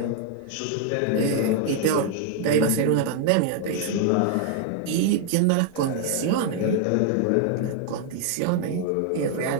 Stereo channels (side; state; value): both; different; correlation 0.00